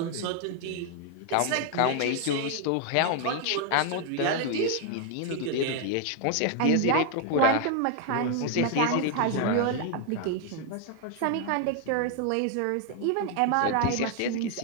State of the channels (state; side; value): different; both; correlation 0.00